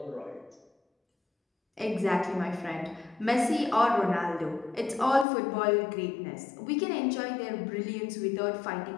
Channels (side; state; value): right; drops out; at 5.2 s